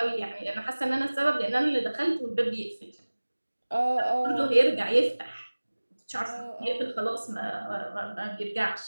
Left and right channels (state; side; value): inverted; both; correlation -1.00